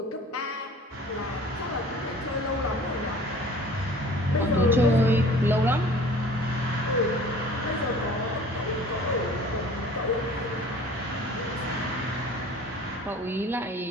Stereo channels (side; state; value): both; normal; correlation 0.46